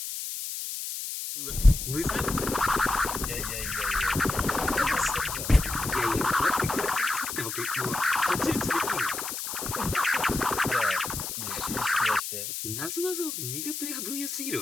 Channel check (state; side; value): noise; left; hiss, 5 dB below the sound